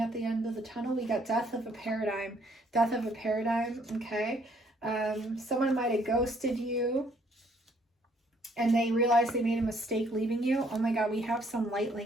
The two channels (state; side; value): normal; both; correlation 0.65